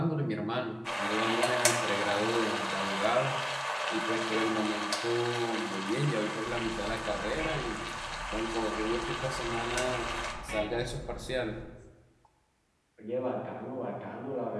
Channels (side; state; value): both; identical; correlation 1.00